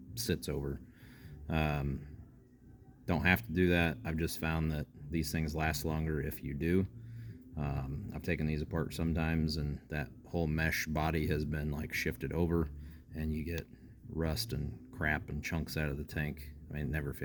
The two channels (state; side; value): identical; both; correlation 1.00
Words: sits over. Don't have to do that. I've just found that these things last longer if you do. I've taken these apart sometimes and that whole mesh body has been like shifted over and you get rust and crap and chunks out of the tank. I mean, it never